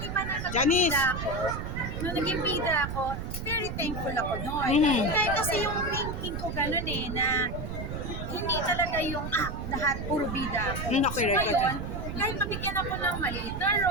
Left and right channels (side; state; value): right; noise; rumble, 5 dB below the sound